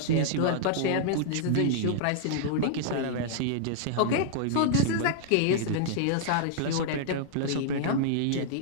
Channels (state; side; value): different; both; correlation -0.01